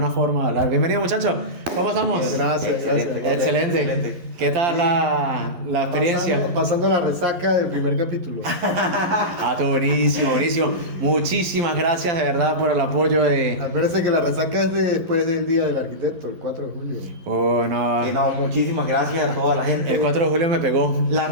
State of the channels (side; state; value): left; late; 11 ms